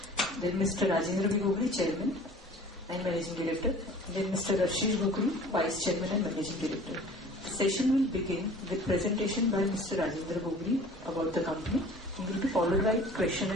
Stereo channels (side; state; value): both; normal; correlation 0.46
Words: Then Mr. Rajendra B. Gogri, Chairman and Managing Director. Then Mr. Rashish Gogri, Vice Chairman and Managing Director. The session will begin with presentation by Mr. Rajendra Gogri about the company and will be followed by question